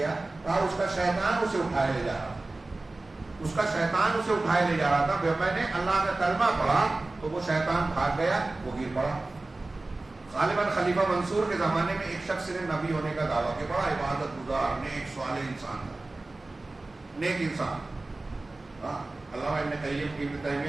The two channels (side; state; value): left; quieter; 3.1 dB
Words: کہا اس کا شیطان اسے اٹھائے لے جا رہا تھا, اس کا شیطان اسے اٹھائے لے جا رہا تھا. میں نے اللہ کا کلمہ پڑھا تو وہ شیطان بھاگ گیا, وہ گر پڑا. غالباً خلیفہ منصور کے زمانے میں ایک شخص نے نبی ہونے کا دعویٰ کہ بڑا عبادت گزار, نیک صالح انسان تھا, نیک انسان. علامہ ابن